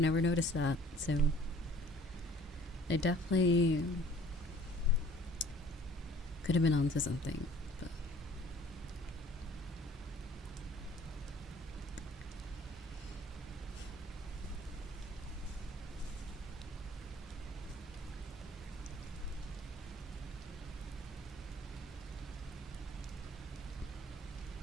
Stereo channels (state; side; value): normal; both; correlation 0.52